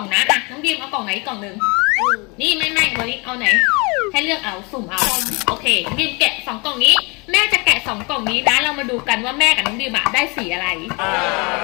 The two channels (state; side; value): quieter; right; 29.2 dB